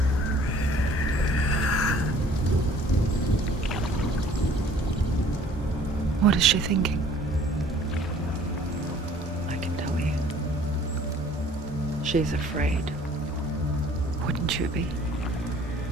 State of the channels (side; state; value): both; normal; correlation 0.54